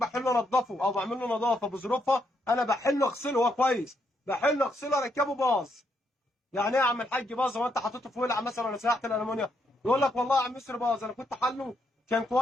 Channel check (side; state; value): both; normal; correlation 0.76